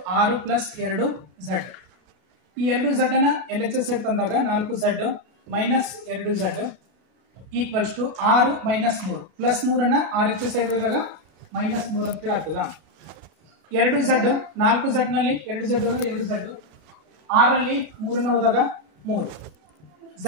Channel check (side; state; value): left; late; 33 ms